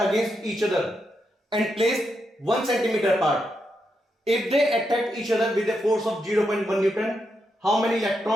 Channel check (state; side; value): normal; both; correlation 0.83